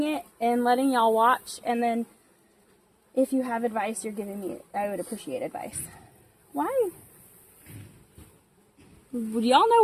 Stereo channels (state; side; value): identical; both; correlation 1.00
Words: it and letting y'all watch, and then if you have advice you're giving me, I would appreciate advice. Why? Do y'all know